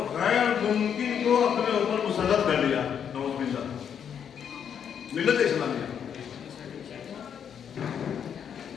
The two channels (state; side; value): quieter; right; 8.1 dB